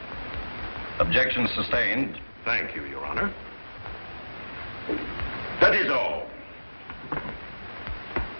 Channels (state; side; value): inverted; both; correlation -1.00